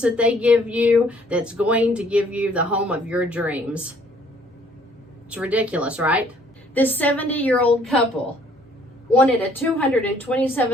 that they give you that's going to give you the home of your dreams. It's ridiculous, right? This 70-year-old couple wanted a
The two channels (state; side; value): normal; both; correlation 0.61